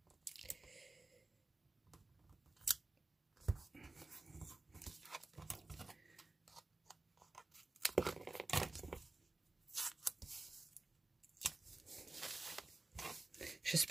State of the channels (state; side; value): quieter; left; 3.2 dB